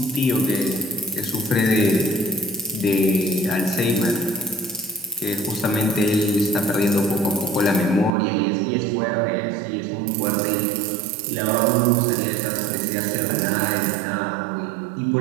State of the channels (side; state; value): left; drops out; at 8.1 s